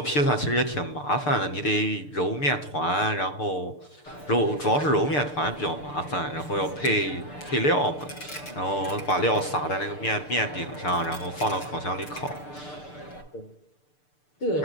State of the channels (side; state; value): right; late; 6.7 ms